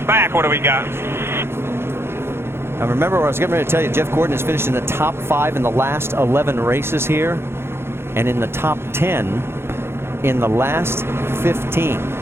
back? What do we got? Now remember what I was getting ready to tell you. Jeff Gordon has finished in the top 5 in the last 11 races here, and in the top 10 in the last 15.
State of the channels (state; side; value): late; left; 0.12 ms